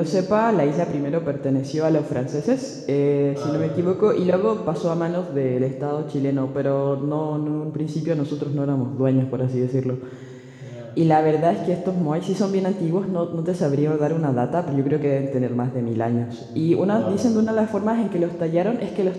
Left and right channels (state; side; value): identical; both; correlation 1.00